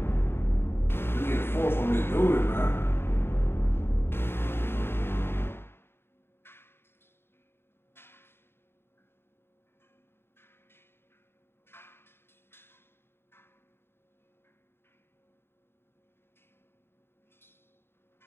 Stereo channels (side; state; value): right; late; 0.11 ms